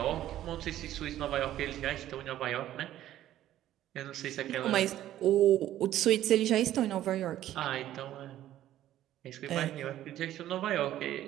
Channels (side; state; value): left; quieter; 12.9 dB